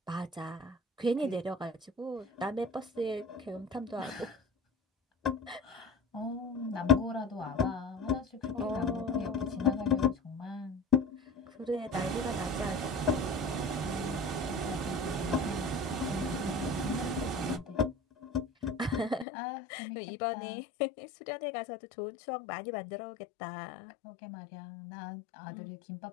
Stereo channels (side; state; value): right; drops out; at 19.2 s